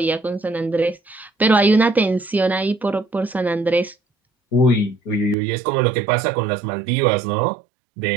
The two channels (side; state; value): left; drops out; at 5.4 s